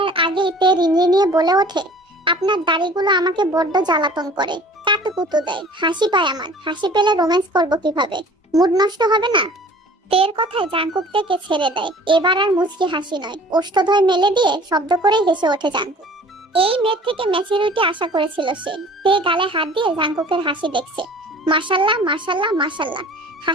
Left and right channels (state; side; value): normal; both; correlation 0.48